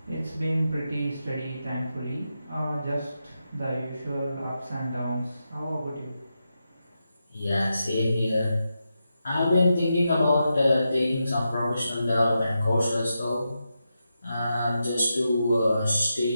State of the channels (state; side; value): inverted; both; correlation -0.87